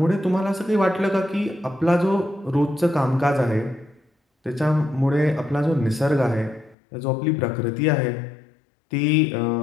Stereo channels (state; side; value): drops out; right; at 6.8 s